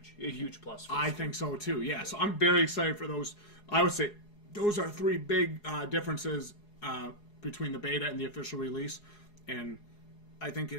plus for I think so too, yeah. So I'm very excited for those. I would say those are 3 big differences between the beta and the official release, and I think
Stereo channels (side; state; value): right; late; 4.8 ms